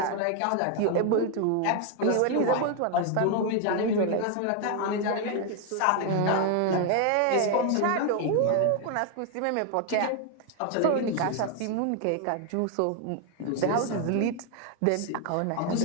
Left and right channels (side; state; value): both; different; correlation 0.01